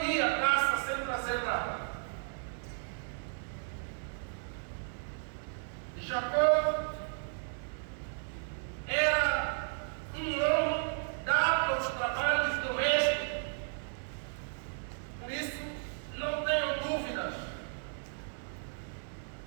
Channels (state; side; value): silent; left; 55 dB below the other